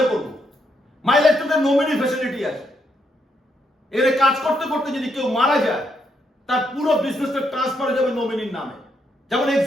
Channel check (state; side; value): normal; both; correlation 0.77